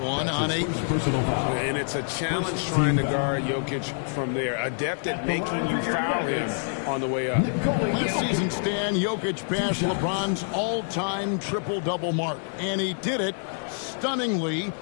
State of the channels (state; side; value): silent; right; 61 dB below the other